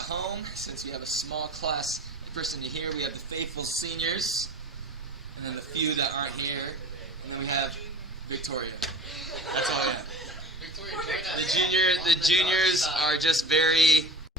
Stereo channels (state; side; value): normal; both; correlation 0.38